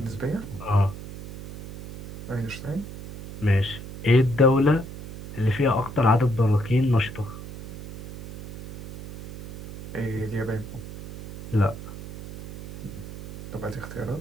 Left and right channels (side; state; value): right; noise; hum, 12 dB below the sound